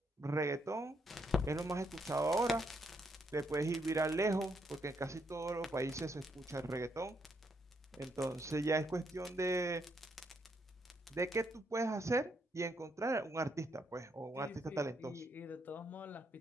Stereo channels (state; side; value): normal; both; correlation 0.75